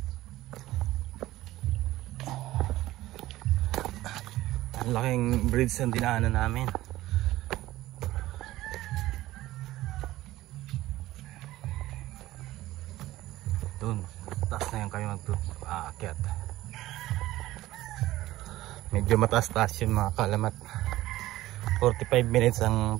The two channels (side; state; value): left; quieter; 16.4 dB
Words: Ang laking bridge ang dinaanan namin. Doon, taas na yan kami mag-aakyat. Medyo mataas-taas yun mga kalamat. 45 minutes ang